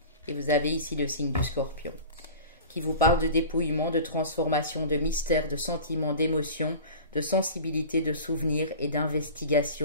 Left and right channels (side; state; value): both; inverted; correlation -0.37